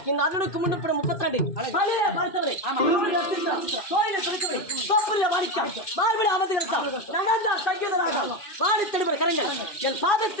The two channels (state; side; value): late; right; 2.4 ms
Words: இந்த அர்ஜுனுக்கு முன்னுப்படும் 32 பழைய பரிசவரை கோயிலை துடிக்கவை தோப்பரிய வாடிக்கை மார்பிட அமர்ந்துகிறார் நடந்தா சங்கீதராக வாடி தெளிவர் கரங்கள் என்